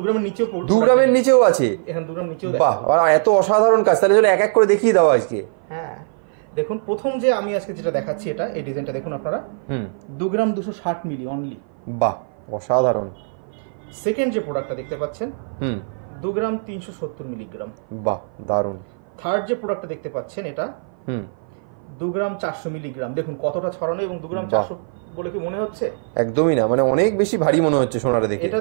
গ্রামের নিচেও, 2 গ্রামের নিচেও আছে, এখন 2 গ্রাম নিচেও বাহ, এত অসাধারণ কাজ, তাহলে এক এক করে দেখিয়ে দাও আজকে। হ্যাঁ, দেখুন প্রথম যে আমি আজকে যেটা দেখাচ্ছি, এটা এই ডিজাইনটা দেখুন আপনারা, 2 গ্রাম 260 মিলি অনলি, বাহ, অসাধারণ। সেকেন্ড যে প্রোডাক্টটা দেখতে পাচ্ছেন 2 গ্রাম 370 মিলিগ্রাম, বাহ, দারুণ। থার্ড যে প্রোডাক্টটা দেখতে পাচ্ছেন এটা 2 গ্রাম 400 মিলিগ্রাম, দেখুন কতটা ছড়ানো, এবং 2 গ্রাম 400 বলে কি মনে হচ্ছে? একদমই না, মানে অনেক বেশি ভারী মনে হচ্ছে সোনাটা দেখে। এটা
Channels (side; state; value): left; silent; 56 dB below the other